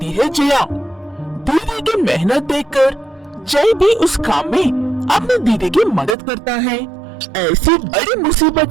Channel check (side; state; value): left; drops out; at 6.2 s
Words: है जया। दीदी की मेहनत देखकर जय भी उस काम में अपनी दीदी की मदद करता है। ऐसी बड़ी मुसीबत